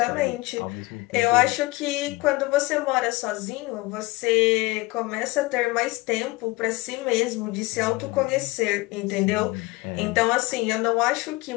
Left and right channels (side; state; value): right; quieter; 22.4 dB